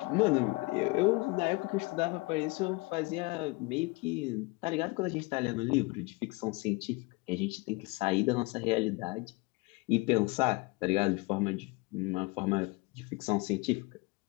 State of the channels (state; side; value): quieter; right; 25.3 dB